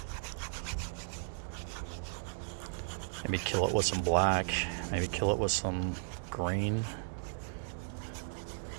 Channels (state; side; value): silent; left; digital silence